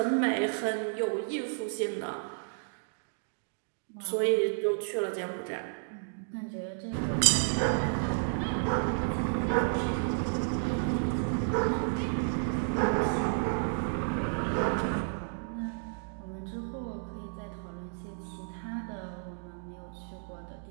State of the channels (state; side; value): silent; left; digital silence